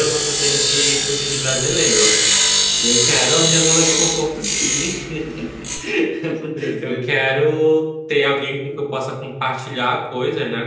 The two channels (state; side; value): identical; both; correlation 1.00